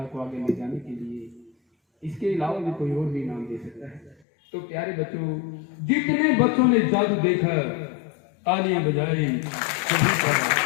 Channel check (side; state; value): right; drops out; at 4.2 s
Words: को आगे ले जाने के लिए, इसके अलावा भी कोई और भी इनाम दे सकता है। तो प्यारे बच्चों, जितने बच्चों ने जादू देखा तालियां बजाई, सभी